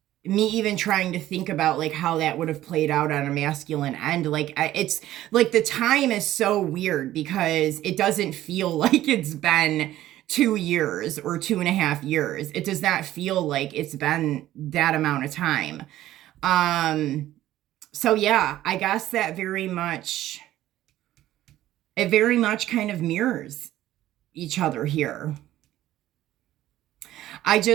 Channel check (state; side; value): quieter; left; 14.0 dB